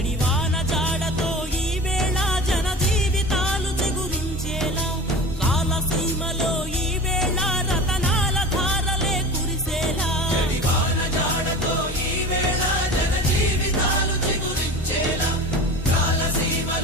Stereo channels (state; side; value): normal; both; correlation 0.34